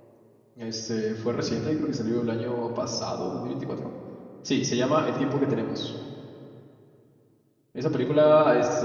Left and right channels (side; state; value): both; identical; correlation 1.00